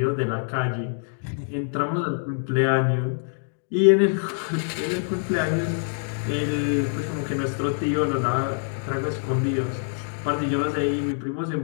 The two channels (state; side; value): silent; right; digital silence